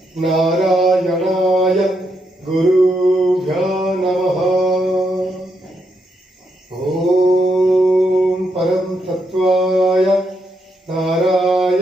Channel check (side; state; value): both; normal; correlation 0.80